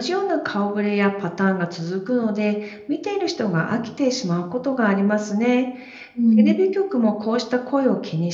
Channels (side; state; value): both; identical; correlation 1.00